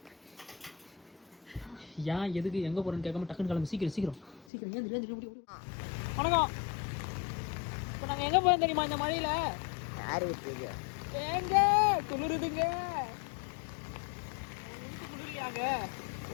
ஏன் எதுக்கு எங்கே போகிறேன்னு கேட்காம டக்குன்னு கிளம்பு. சீக்கிரம் ஏன். வணக்கம். இப்போ நாங்கள் எங்கே போகிறோம் தெரியுமா இந்த மழையில்? யாரு விட்டுருங்க ஏங்க குளிருதுங்க. குளிரியாங்க?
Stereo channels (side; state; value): right; drops out; at 4.5 s